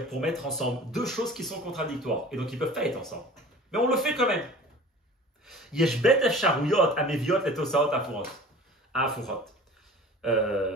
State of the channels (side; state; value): both; normal; correlation 0.42